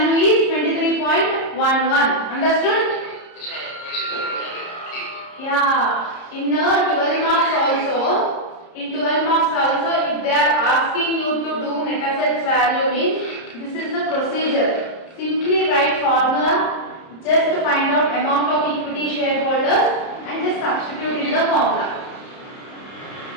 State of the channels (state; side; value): late; right; 30 ms